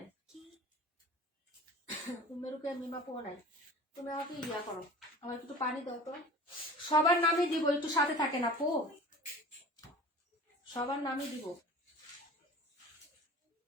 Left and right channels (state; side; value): normal; both; correlation 0.41